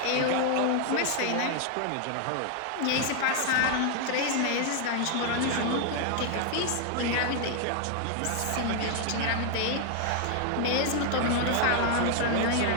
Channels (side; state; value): both; different; correlation 0.00